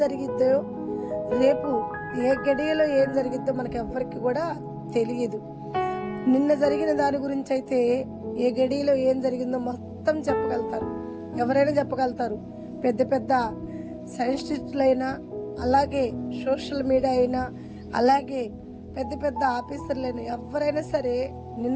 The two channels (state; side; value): identical; both; correlation 1.00